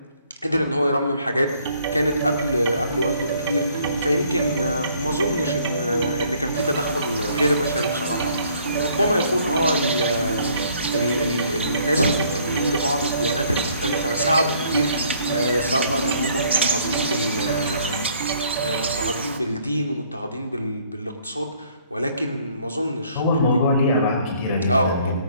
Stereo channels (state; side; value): inverted; both; correlation -0.62